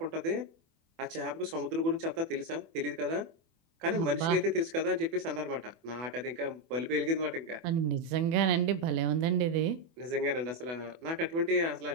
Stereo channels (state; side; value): late; left; 24 ms